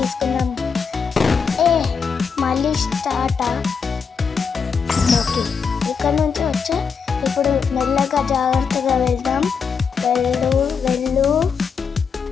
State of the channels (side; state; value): right; quieter; 6.0 dB